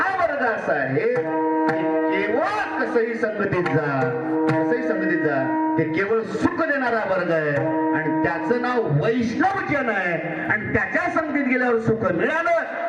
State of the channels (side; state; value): both; identical; correlation 1.00